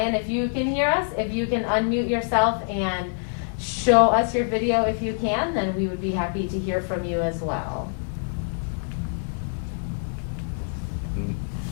if you can hear us, if you can unmute yourself and show us your video if you can, then we would be happy to hear from you as well.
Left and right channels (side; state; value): right; silent; digital silence